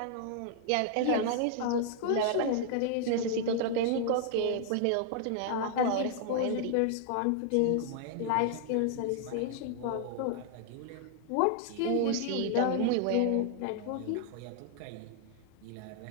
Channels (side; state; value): both; different; correlation 0.00